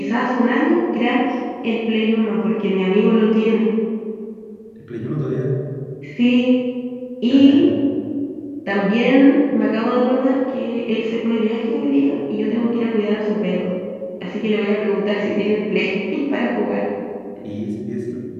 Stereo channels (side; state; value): both; identical; correlation 1.00